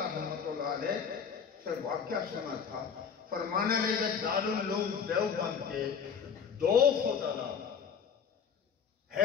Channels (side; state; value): right; quieter; 6.8 dB